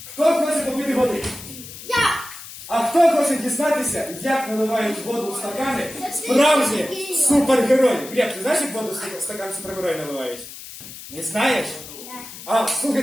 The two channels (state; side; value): noise; left; hiss, 14 dB below the sound